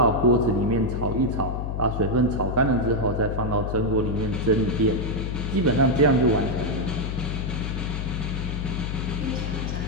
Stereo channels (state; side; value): noise; left; hum, 3 dB below the sound